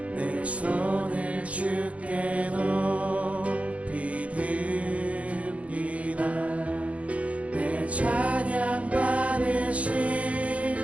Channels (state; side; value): late; left; 0.065 ms